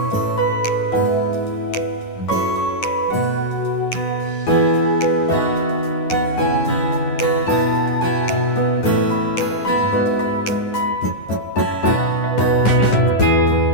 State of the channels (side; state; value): right; late; 9.9 ms